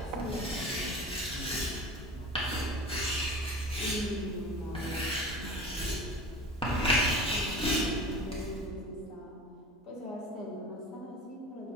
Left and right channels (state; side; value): normal; both; correlation 0.36